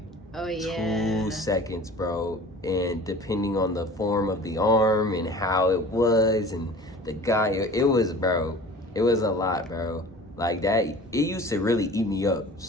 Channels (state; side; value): normal; both; correlation 0.42